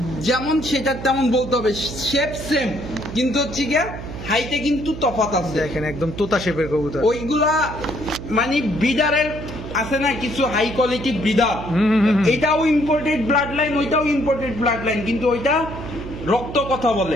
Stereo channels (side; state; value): right; noise; hum, 10 dB below the sound